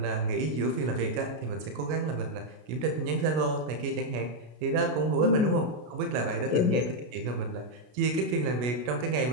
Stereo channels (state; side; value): late; left; 33 ms